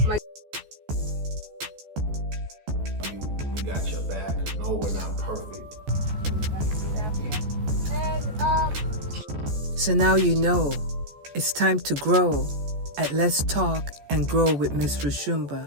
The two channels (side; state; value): left; late; 14 ms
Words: my we got your back. No, we're not perfect. So now you know it's time to grow at Let's Talk and Grow with Miss